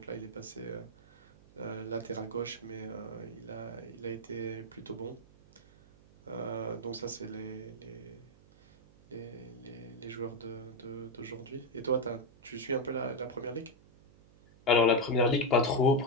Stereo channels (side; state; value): right; noise; hum, 25 dB below the sound